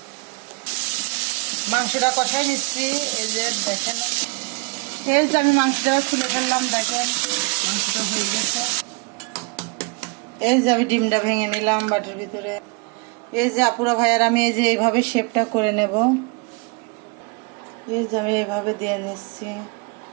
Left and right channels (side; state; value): left; quieter; 29.6 dB